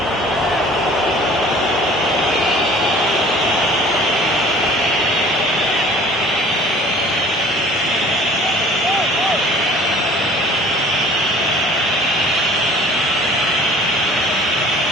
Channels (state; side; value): normal; both; correlation 0.48